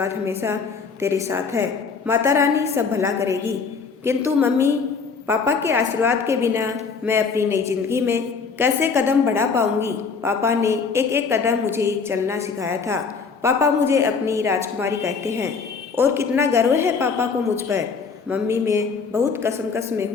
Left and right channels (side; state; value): right; quieter; 5.3 dB